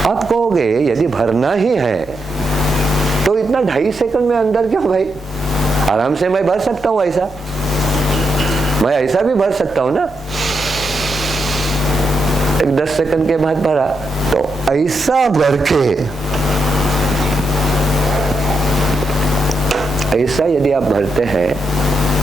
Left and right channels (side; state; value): both; normal; correlation 0.82